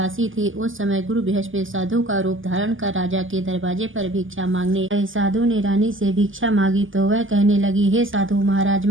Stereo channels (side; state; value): left; late; 0.58 ms